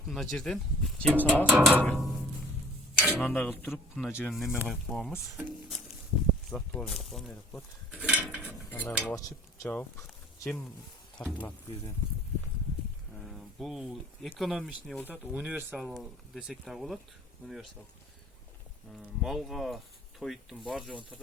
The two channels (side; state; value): both; normal; correlation 0.49